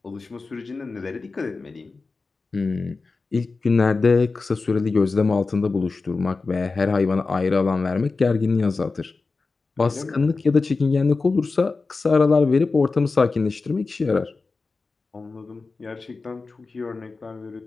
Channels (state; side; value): quieter; right; 4.0 dB